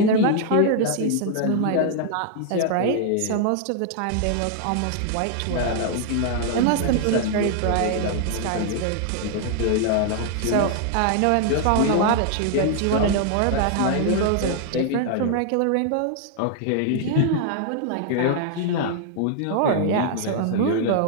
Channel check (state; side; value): different; both; correlation 0.00